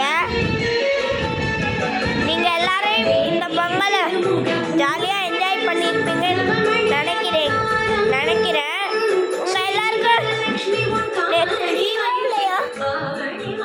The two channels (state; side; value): identical; both; correlation 1.00